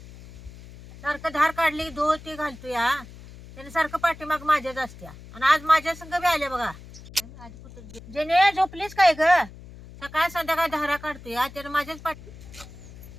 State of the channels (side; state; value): left; noise; hum, 17 dB below the sound